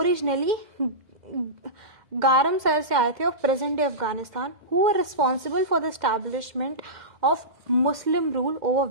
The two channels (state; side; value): late; left; 2.1 ms